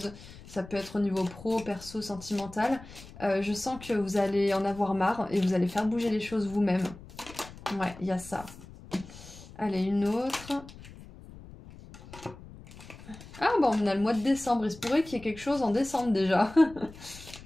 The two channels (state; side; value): noise; left; rumble, 17 dB below the sound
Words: ça peut être au niveau pro, perso, sentimental, je sens que vous allez en avoir marre et vous allez faire bouger les choses vous-même. Ouais, il y a ça. Allez, une autre. Ah bon, on a le mois de décembre, il se pourrait qu'il y ait quelque chose en décembre déjà.